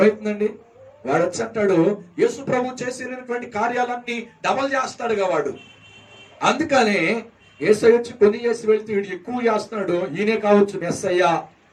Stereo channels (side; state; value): both; identical; correlation 1.00